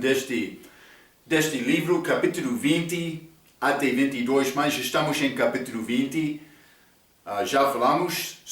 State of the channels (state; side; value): identical; both; correlation 1.00